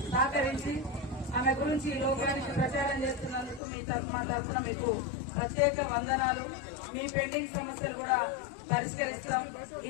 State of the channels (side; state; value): right; drops out; at 3.6 s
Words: సహకరించి ఆమె గురించి ఈ లోకానికి ప్రచారం చేస్తున్నందుకు మా తరఫున మీకు ప్రత్యేక వందనాలు. మీ పెండింగ్ సమస్యలు కూడా పరిష్కరిస్తాం.